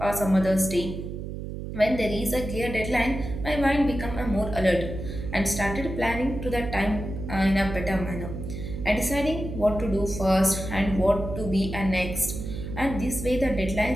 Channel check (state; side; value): noise; right; hum, 7 dB below the sound